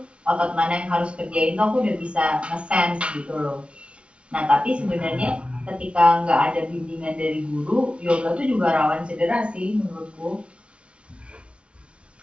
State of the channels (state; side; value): late; left; 0.059 ms